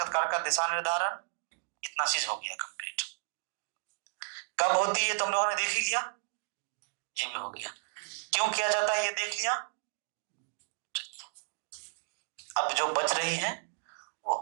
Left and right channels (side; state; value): left; silent; digital silence